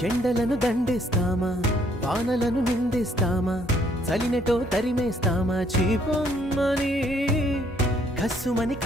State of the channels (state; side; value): normal; both; correlation 0.66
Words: ఎండలను దండిస్తామా, వానలను నిందిస్తామా, చలినటో తరిమేస్తామా, చీపొమ్మని కస్సుమని